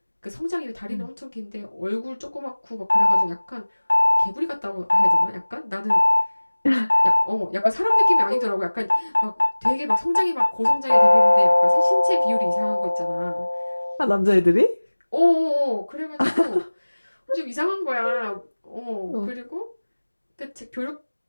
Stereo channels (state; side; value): inverted; both; correlation -1.00